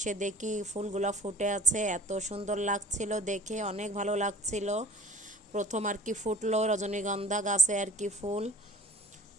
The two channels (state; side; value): normal; both; correlation 0.46